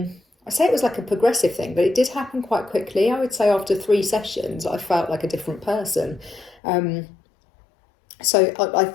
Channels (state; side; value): drops out; right; at 6.6 s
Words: say it was like a progressive thing, but it did happen quite quickly. I would say after 3 sessions I felt like a different person. So I